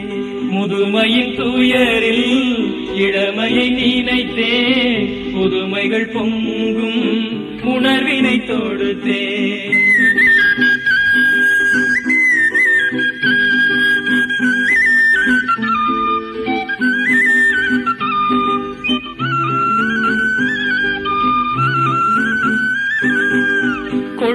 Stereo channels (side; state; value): both; identical; correlation 1.00